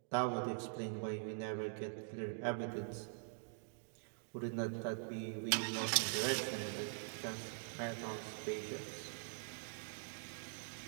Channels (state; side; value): silent; left; digital silence